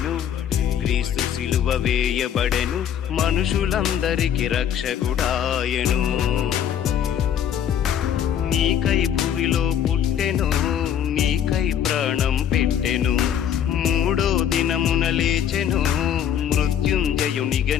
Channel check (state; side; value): quieter; right; 9.4 dB